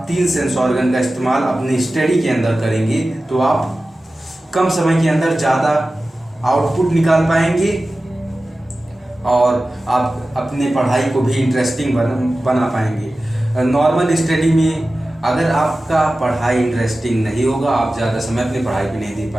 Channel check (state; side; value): normal; both; correlation 0.95